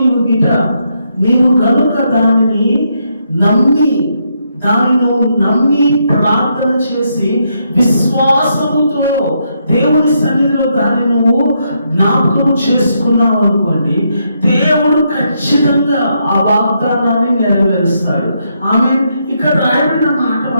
నీవు కనుక దానిని నమ్మి ప్రార్థన చేసి విశ్వాసముతో దేవుని సన్నిధిలో దాన్ని నువ్వు జ్ఞాపకం చేసుకున్నావు అనుకోండి, దేవుడు ఖచ్చితంగా ఆ వాగ్దానాన్ని నెరవేరుస్తాడు. చేస్తాడు. ఆమె ఇక్కడ రాయబడిన మాట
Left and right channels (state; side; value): inverted; both; correlation -0.78